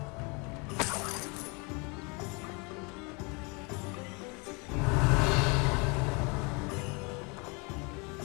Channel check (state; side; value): quieter; right; 30.3 dB